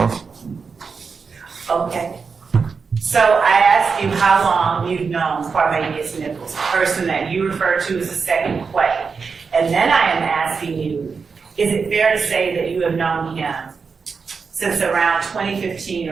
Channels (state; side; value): quieter; left; 5.3 dB